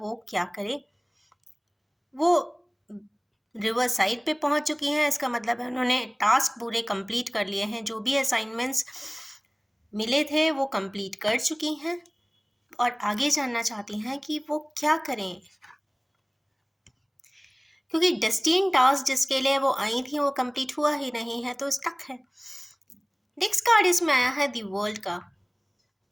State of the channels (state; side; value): identical; both; correlation 1.00